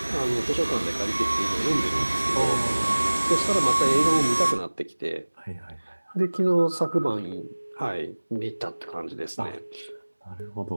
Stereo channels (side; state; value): both; inverted; correlation -1.00